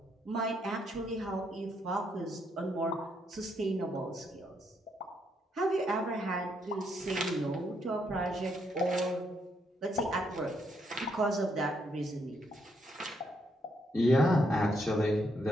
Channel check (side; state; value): both; normal; correlation 0.75